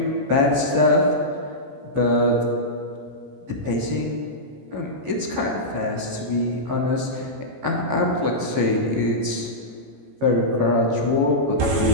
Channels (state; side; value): late; left; 14 ms